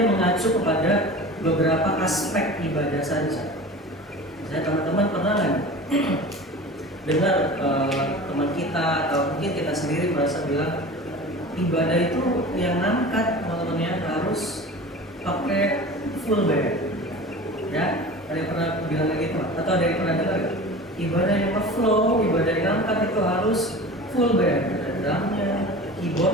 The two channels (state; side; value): normal; both; correlation 0.36